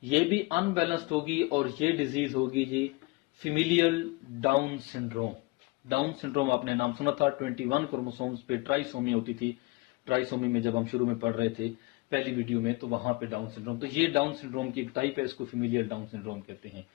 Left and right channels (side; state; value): right; quieter; 24.7 dB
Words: ये भी अनबैलेंस्ड होगी, और ये डिजीज होगी जी familial Down syndrome. Down syndrome आपने नाम सुना था, 21 क्रोमोसोम्स पे ट्राइसोमी होती थी। ट्राइसोमी में जब हम शुरू में पढ़ रहे थे पहली वीडियो में, तो वहां पे डाउन सिंड्रोम, तो ये डाउन सिंड्रोम की एक टाइप है, इसको फेमिलियल डाउन सिंड्रोम कहते हैं।